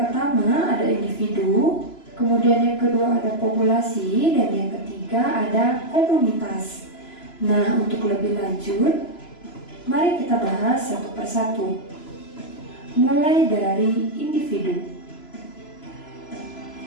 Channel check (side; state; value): right; late; 3.0 ms